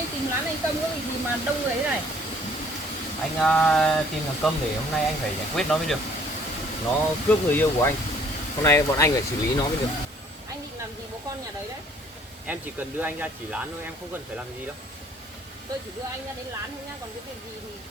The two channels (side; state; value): both; normal; correlation 0.58